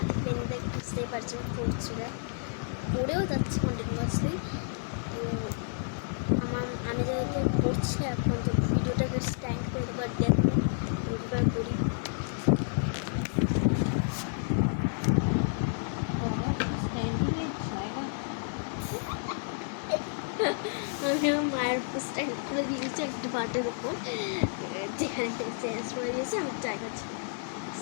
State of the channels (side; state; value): right; silent; 57 dB below the other